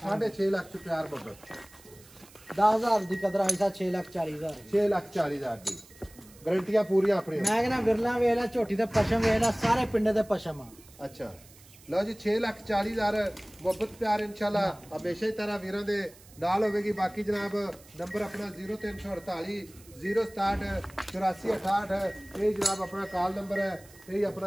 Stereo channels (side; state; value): right; noise; hiss, 23 dB below the sound